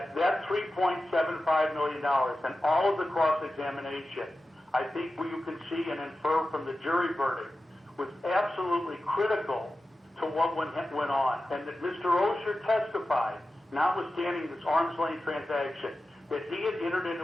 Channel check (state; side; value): normal; both; correlation 0.93